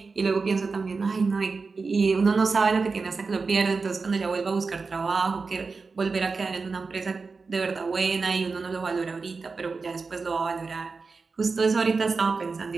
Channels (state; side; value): quieter; left; 4.4 dB